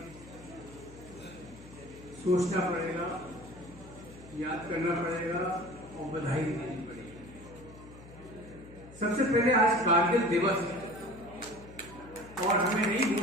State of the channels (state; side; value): noise; left; hum, 19 dB below the sound